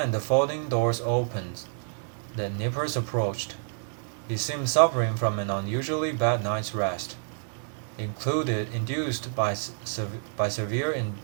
the folding doors opened. The Nippers approached. He seemed suffering from an unusually bad night's rest, induced by severe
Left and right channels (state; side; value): silent; left; 59 dB below the other